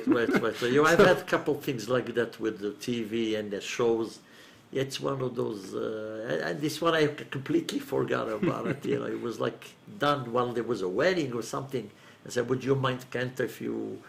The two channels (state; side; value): identical; both; correlation 1.00